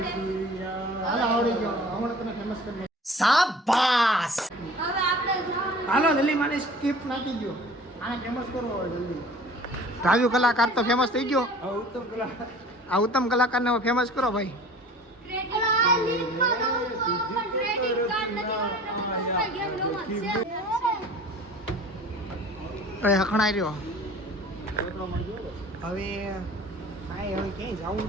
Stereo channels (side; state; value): both; normal; correlation 0.44